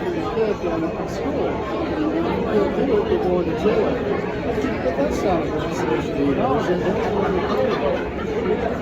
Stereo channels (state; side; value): identical; both; correlation 1.00